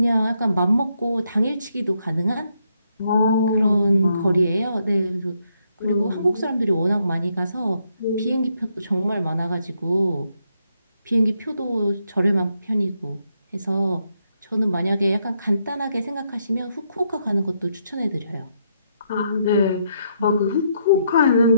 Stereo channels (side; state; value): both; inverted; correlation -0.77